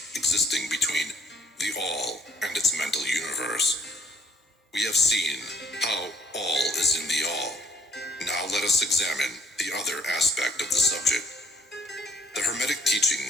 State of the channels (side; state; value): both; normal; correlation 0.61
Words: existing between the All and its mental universe. We have seen how all is in the All. Now let us examine the other aspect of the subject. The Hermetic